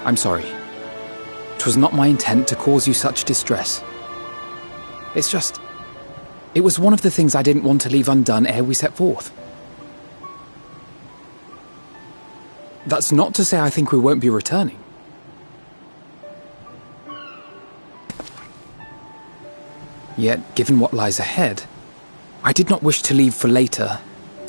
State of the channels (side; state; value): both; inverted; correlation -1.00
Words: I'm sorry. 'Twas not my intent to cause you such distress. It's just... it was one of the things I didn't want to leave undone ere we set forth. That's not to say I think we won't be returning. Yet, given what lies ahead, I did not wish to leave for later